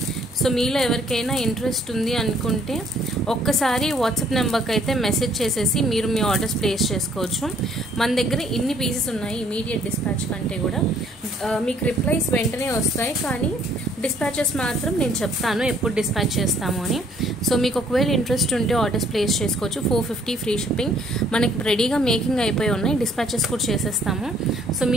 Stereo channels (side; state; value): both; normal; correlation 0.63